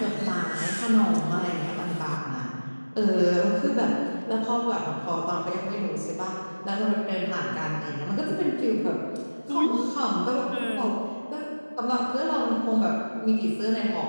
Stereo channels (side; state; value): both; inverted; correlation -1.00